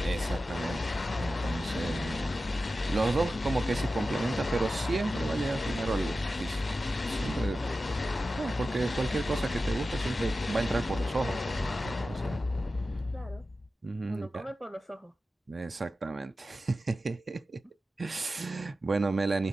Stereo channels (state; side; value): normal; both; correlation 0.93